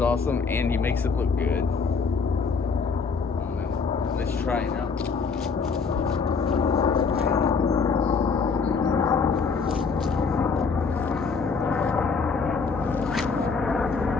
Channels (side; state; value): right; quieter; 5.1 dB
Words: awesome, and he makes it look good. I don't know. Let's try it out.